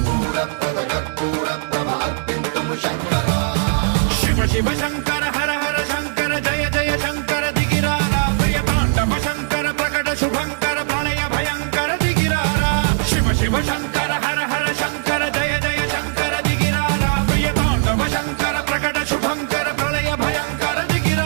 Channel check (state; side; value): silent; left; digital silence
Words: శూరప్రద కర్పూర ప్రభ అర్పింతుము శంకరా శివ శివ శంకర హర హర శంకర జయ జయ శంకర దిగిరారా ప్రియ తాండవ శంకర ప్రకట శుభంకర ప్రళయ భయంకర దిగిరారా శివ శివ శంకర హర హర శంకర జయ జయ శంకర దిగిరారా ప్రియ తాండవ శంకర ప్రకట శుభంకర ప్రళయ భయంకర